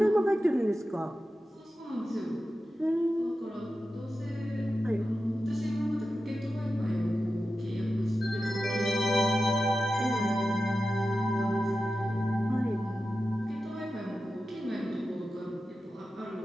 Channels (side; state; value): both; normal; correlation 0.92